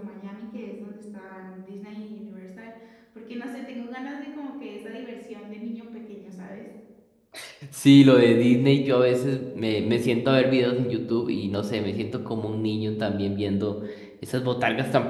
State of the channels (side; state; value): both; identical; correlation 1.00